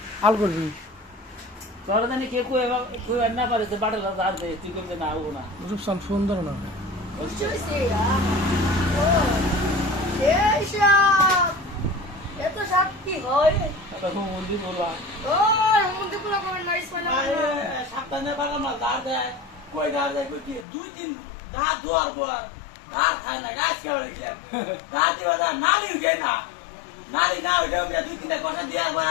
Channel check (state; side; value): drops out; right; at 20.7 s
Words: আল করবি। তোরা জানি কে কই না পারে যে বাড়ার দাঁড় দেয়, তুই করবে না আবো না। রূপসান ফোন ধরে না। এত সাপ কি হয়? মন্দির বলবা ও মন্দির গুলো কমেন্ট নাইস মানে সাবধানে বাগান মাল দাঁড় দেয়, কই দাঁড় দেয়, কই কি 2-3 রাত ধোয়ার পর আর খায় না, গাছ কেবল গেলাম রাত দিবা না, নারী উঠে না, নারী না উঠে 2-3টা কথা দিয়ে